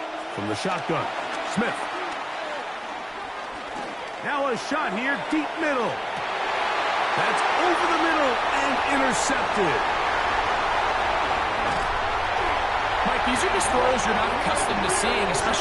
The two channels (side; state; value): both; identical; correlation 1.00